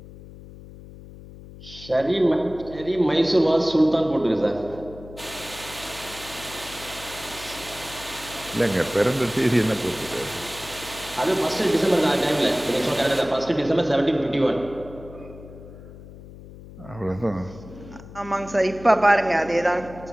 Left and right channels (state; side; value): noise; left; hum, 17 dB below the sound